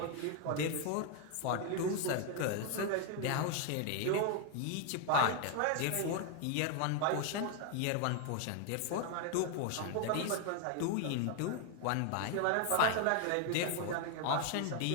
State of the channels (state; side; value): different; both; correlation 0.01